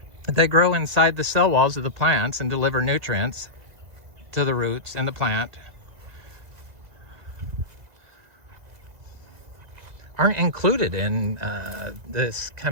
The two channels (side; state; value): left; late; 2.0 ms